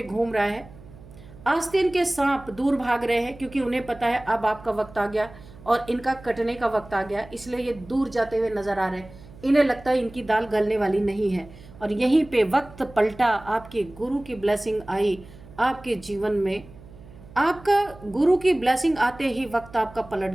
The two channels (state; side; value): noise; right; hum, 20 dB below the sound